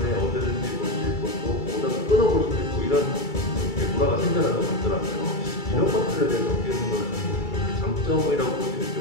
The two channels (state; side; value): late; right; 2.3 ms